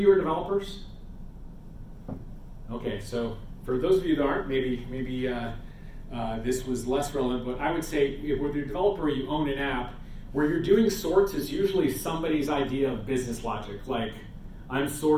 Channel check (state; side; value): identical; both; correlation 1.00